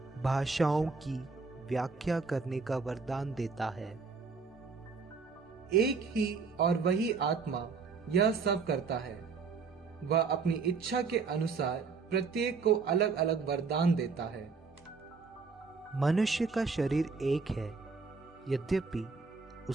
भाषाओं की व्याख्या करने का वरदान देता है। एक ही और वही आत्मा यह सब करता है। वह अपनी इच्छा के अनुसार प्रत्येक को अलग अलग वरदान देता है। मनुष्य का शरीर एक है, यद्यपि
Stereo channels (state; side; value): quieter; left; 4.8 dB